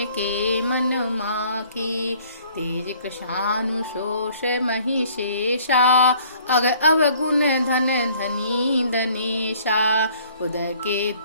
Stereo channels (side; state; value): both; inverted; correlation -0.57